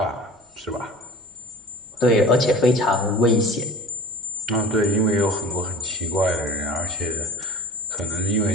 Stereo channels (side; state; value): both; normal; correlation 0.41